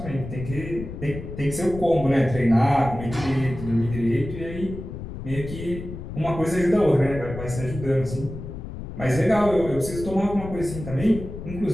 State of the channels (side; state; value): left; noise; rumble, 10 dB below the sound